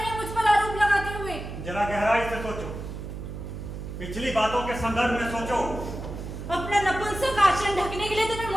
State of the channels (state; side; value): noise; right; hum, 8 dB below the sound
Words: मुझ पर आरोप लगाते हुए? जरा गहराई से सोचो, पिछली बातों के संदर्भ में सोचो। अपना नपुंसक आचरण ढकने के लिए तुम्हें